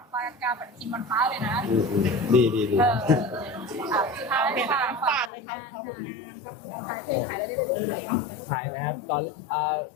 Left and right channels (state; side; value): drops out; right; at 5.3 s